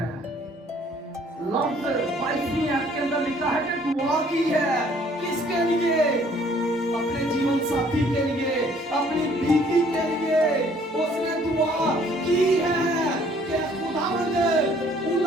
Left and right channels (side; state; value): both; normal; correlation 0.60